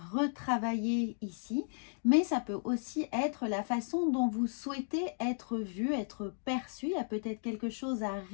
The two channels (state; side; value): silent; right; digital silence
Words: retravailler ici, mais ça peut aussi être la façon dont vous souhaitez être vu, être perçu. Il y a peut-être quelque chose à